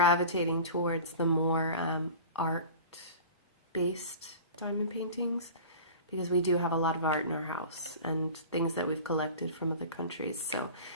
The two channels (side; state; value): both; inverted; correlation -0.38